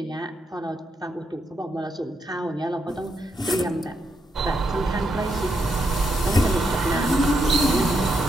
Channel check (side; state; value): both; normal; correlation 0.80